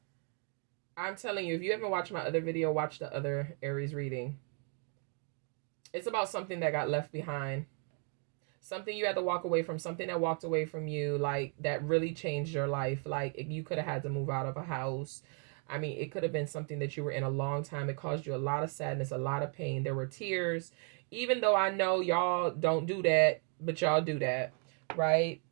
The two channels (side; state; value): left; quieter; 39.2 dB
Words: I'm telling you, if you haven't watched my other video, watch the other Aries reading. It's about something that got left behind. Something you had to walk away from. Something that walked away from you, like, that really changed your life. Like, you could have had to move out of a house. I mean, it could have been something that you were in a long time. It caused you a lot of sadness, a lot of pain. There were tears. Even though I know y'all don't do that, but y'all do that, right?